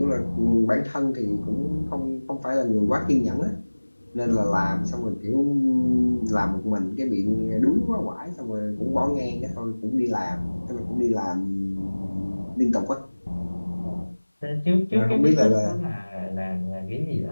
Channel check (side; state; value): both; inverted; correlation -1.00